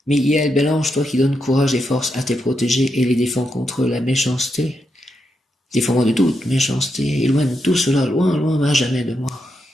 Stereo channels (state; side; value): normal; both; correlation 0.83